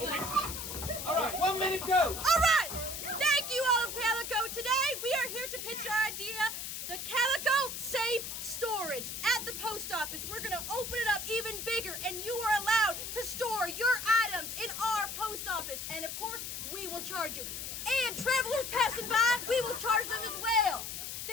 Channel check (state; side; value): noise; left; hiss, 6 dB below the sound